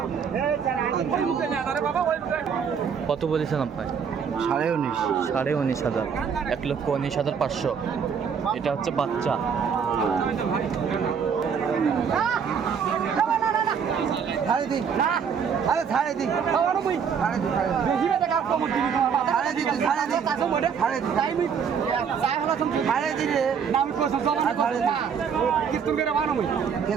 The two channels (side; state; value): left; quieter; 6.8 dB